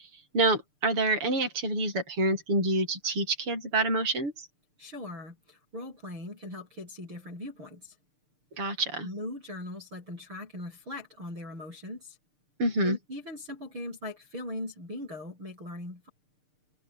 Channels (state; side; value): late; left; 6.7 ms